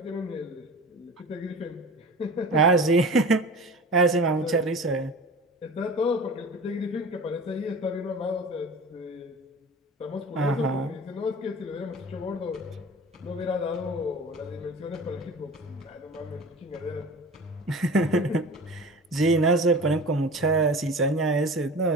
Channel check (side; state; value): both; normal; correlation 0.37